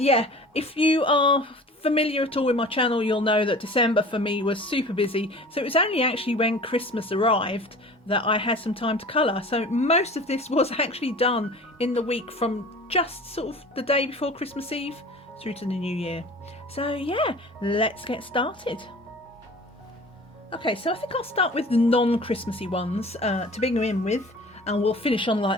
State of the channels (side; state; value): both; normal; correlation 0.42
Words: if you are familiar at all with my channel, you'll know that December for me was super busy. So it was only actually when Christmas arrived that I had some time to colour. So most of this was actually done in the week from just sort of the day before Christmas Eve through to the new year. So yeah, let's get started. Okay, so I think I'll start with the non-Christmassy ones to begin with. And we'll finish on